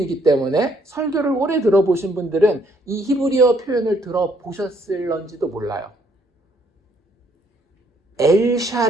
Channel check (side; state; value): both; normal; correlation 0.68